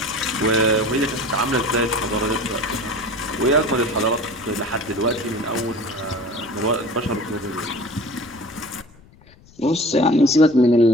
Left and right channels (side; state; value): left; noise; rumble, 25 dB below the sound